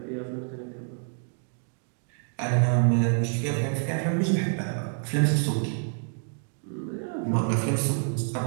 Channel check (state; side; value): silent; left; 60 dB below the other